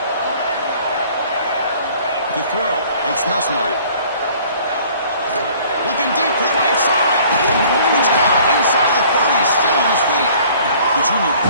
To throw, it's Nussmeier. Looking deep to the right side. It's caught inside the 30, still on his feet. The junior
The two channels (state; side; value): inverted; both; correlation -0.53